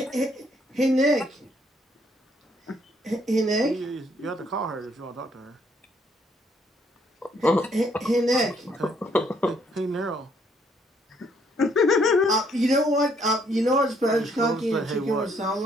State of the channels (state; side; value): normal; both; correlation 0.68